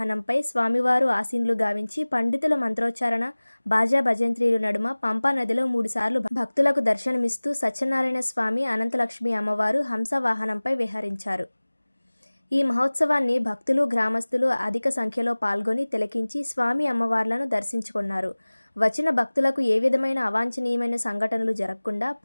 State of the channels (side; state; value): both; inverted; correlation -1.00